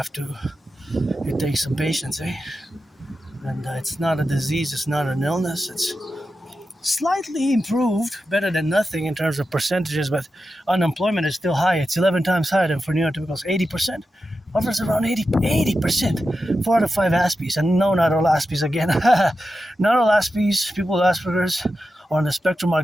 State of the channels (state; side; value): normal; both; correlation 0.91